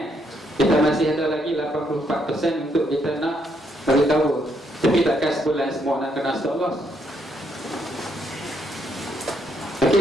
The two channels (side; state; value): both; normal; correlation 0.74